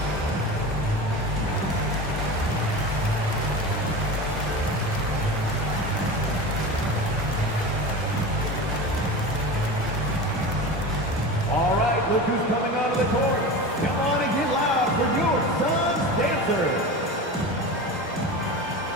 All right, look who's coming onto the court. Come on and get loud for your Suns dancers.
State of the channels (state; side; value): normal; both; correlation 0.29